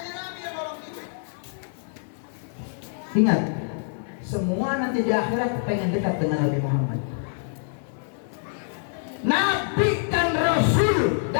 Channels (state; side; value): silent; right; digital silence